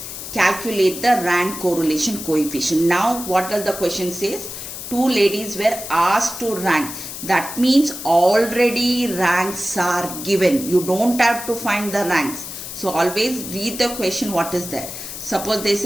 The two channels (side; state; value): left; noise; hiss, 9 dB below the sound